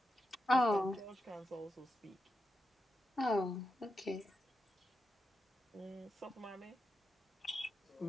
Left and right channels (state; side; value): normal; both; correlation 0.87